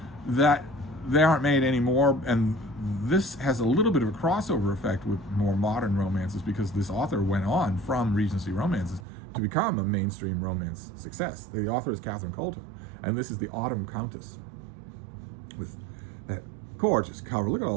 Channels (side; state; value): left; drops out; at 9.0 s